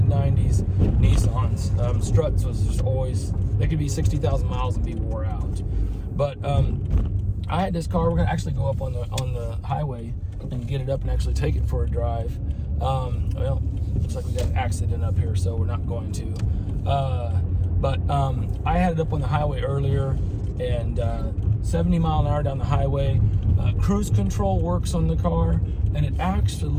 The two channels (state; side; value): identical; both; correlation 1.00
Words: 90s Nissans. Struts was just always, they could be 60,000 miles and be wore out. But I had this car. We're gonna actually go up on the highway and get it up and actually take it for a drive. Well, looks like we got an accident up here, so we're not going to. But I had it up on the highway earlier, and 70 mile an hour down the highway. Cruise control works on the car, and it